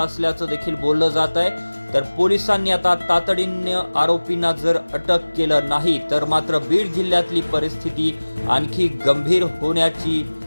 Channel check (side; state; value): both; inverted; correlation -1.00